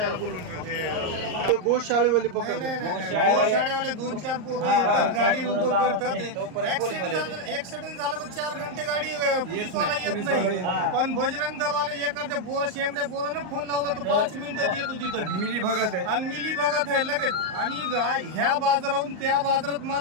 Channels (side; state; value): left; late; 38 ms